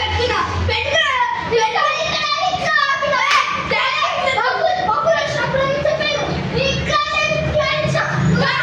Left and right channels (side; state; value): both; identical; correlation 1.00